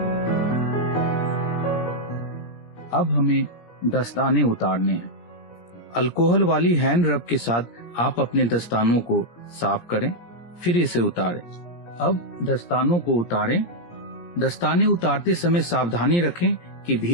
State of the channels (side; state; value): right; late; 17 ms